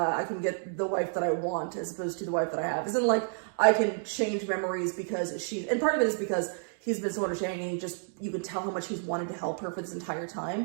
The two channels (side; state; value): left; silent; 58 dB below the other